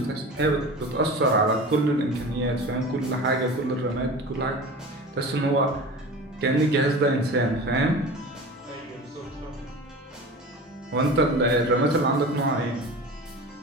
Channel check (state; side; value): normal; both; correlation 0.34